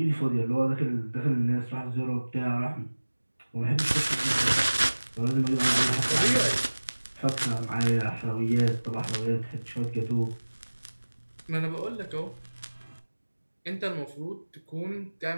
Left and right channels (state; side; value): inverted; both; correlation -1.00